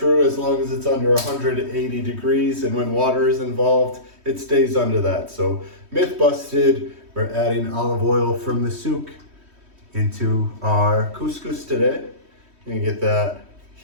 as long as it's under 180 degrees, and when water is involved, it stays under that. So myth busted. We're adding olive oil from the souk into our couscous today. Gonna get that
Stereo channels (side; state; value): left; late; 3.1 ms